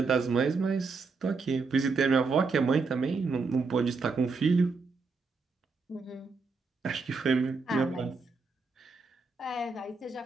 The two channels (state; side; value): quieter; left; 4.4 dB